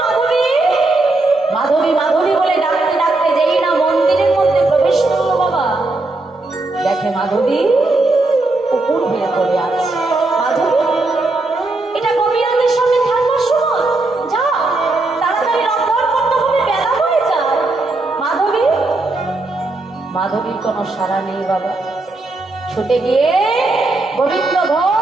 মাধবী? মাধবী মাধবী বলে ডাকতে ডাকতে যেই না মন্দিরের মধ্যে প্রবেশ করলো বাবা, দেখে মাধবী উপর হয়ে পড়ে আছে। মাধবী, এটা গোপীনাথের সামনে থাকবার সময়, যাও তাড়াতাড়ি রন্ধন করতে হবে, বেলা হয়ে যায়। মাধবী, মাধবীর কোনো সাড়া নেই বাবা। ছুটে গিয়ে গোবিন্দ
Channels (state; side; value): quieter; left; 3.1 dB